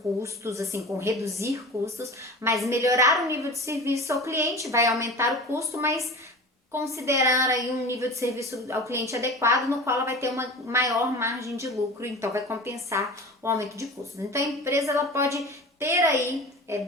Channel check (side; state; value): both; normal; correlation 0.34